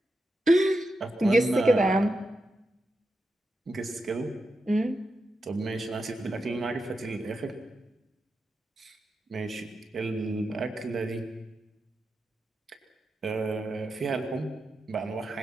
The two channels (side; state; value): both; normal; correlation 0.88